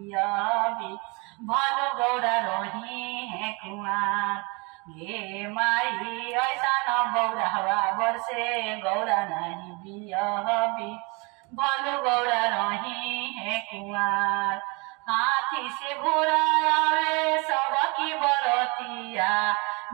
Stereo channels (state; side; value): quieter; left; 29.4 dB